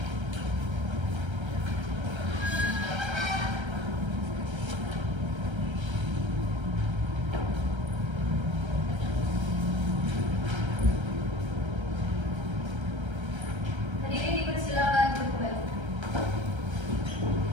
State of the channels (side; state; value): left; late; 1.3 ms